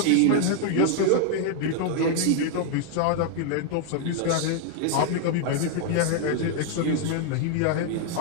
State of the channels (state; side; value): different; both; correlation 0.00